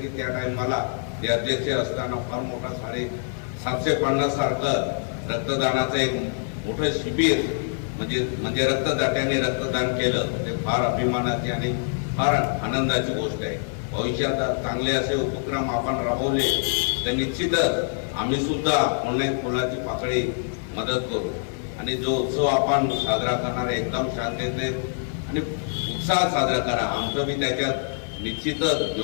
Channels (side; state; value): right; silent; 56 dB below the other